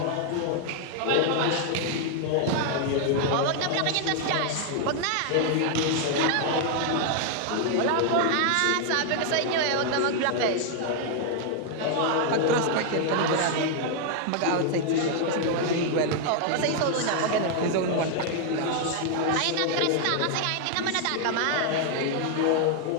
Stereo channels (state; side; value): different; both; correlation 0.00